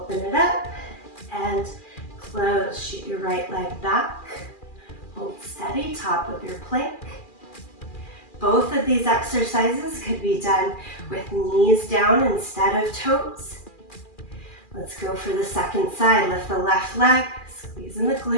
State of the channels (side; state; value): right; late; 2.4 ms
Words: it up, and close. Shoot your right leg back, hold steady, top of your plank. Both of these exercises could be done with knees down instead of toes. Let's go for the second side. Lift the left leg, squeeze in the